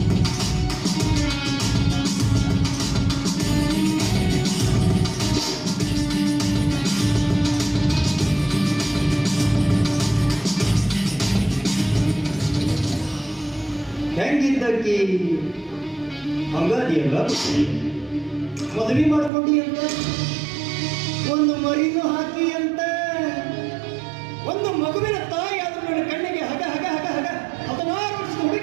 ಹೆಂಗಿದ್ದಕ್ಕೆ ಹಂಗಾದಿಯಲ್ಲ. ಮದುವೆ ಮಾಡ್ಕೊಂಡಿ ಅಂತ, ಒಂದು ಮರಿನೂ ಹಾಕಿ ಅಂತ, ಒಂದು ಮಗುವಿನ ತಾಯಿ ಆದ್ರೂ ನನ್ನ ಕಣ್ಣಿಗೆ ಹಗ ಹಗ ಹಗ ಹಗ 16 ವರ್ಷದ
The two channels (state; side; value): drops out; left; at 19.3 s